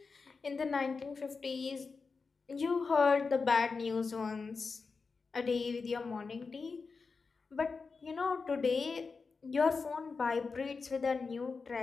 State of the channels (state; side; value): quieter; right; 4.6 dB